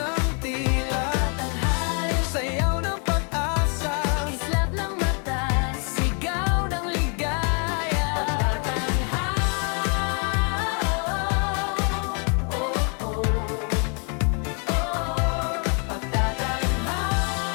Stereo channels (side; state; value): right; quieter; 38.3 dB